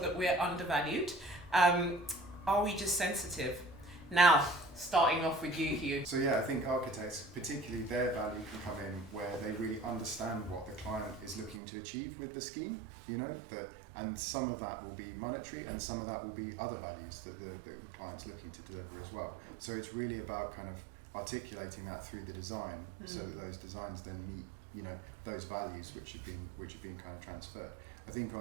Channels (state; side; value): drops out; left; at 11.6 s